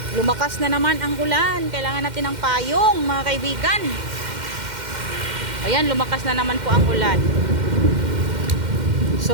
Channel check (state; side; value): late; left; 2.1 ms